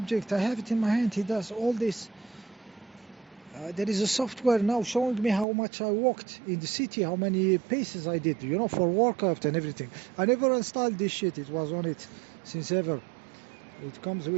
I have it in my hand. He does all this. There is a software now showing me how much I walked in the city, how many paces I did, you know, for workout and everything. I never installed this shit. It was on it since ever. It comes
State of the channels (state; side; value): drops out; left; at 5.5 s